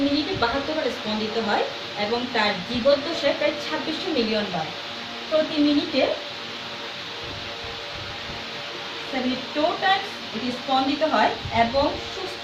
মিনিটে 72 বার স্পন্দিত হয়, এবং তার জীবদ্দশায় প্রায় 2600 মিলিয়ন বার প্রতি মিনিটে 72 টাইমস এটি স্পন্দিত হয়। এবং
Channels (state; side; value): identical; both; correlation 1.00